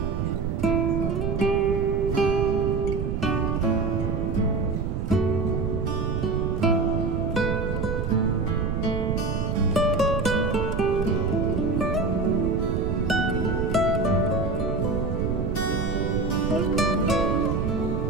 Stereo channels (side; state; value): right; noise; rumble, 1 dB below the sound